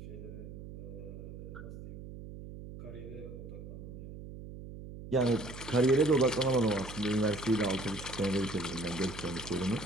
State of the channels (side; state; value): right; noise; hum, 12 dB below the sound